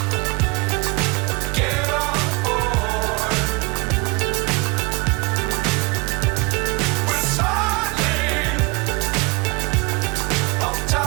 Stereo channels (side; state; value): left; quieter; 26.8 dB